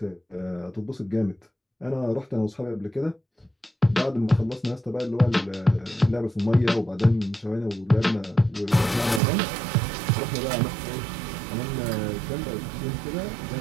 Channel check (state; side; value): drops out; left; at 9.2 s